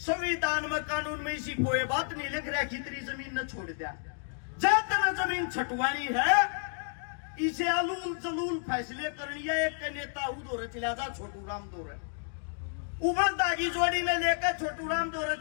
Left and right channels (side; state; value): right; silent; 57 dB below the other